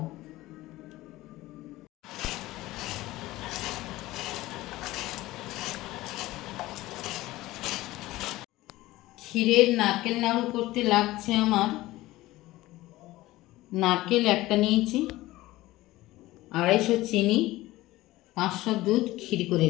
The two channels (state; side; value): quieter; right; 17.7 dB